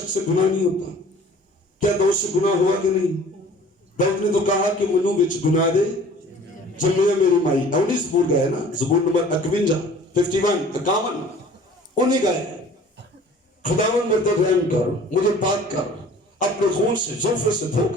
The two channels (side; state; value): both; normal; correlation 0.48